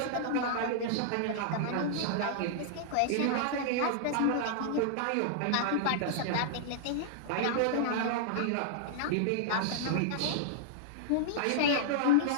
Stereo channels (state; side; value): different; both; correlation -0.01